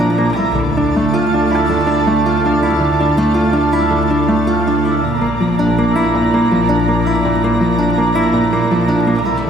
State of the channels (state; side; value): normal; both; correlation 0.67